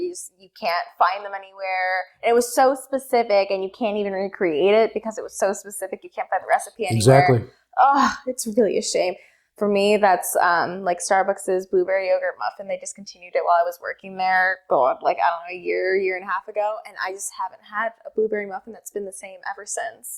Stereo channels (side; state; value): both; identical; correlation 1.00